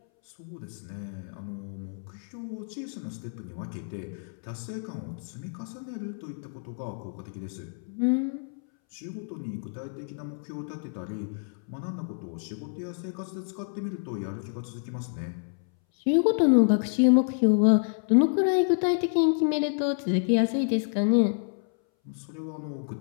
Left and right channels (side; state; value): right; silent; 59 dB below the other